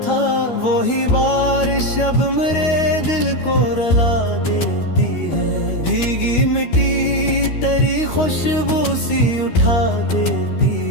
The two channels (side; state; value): right; late; 13 ms